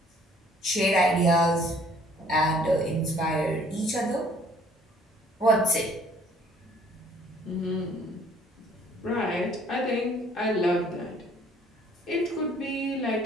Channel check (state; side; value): normal; both; correlation 0.59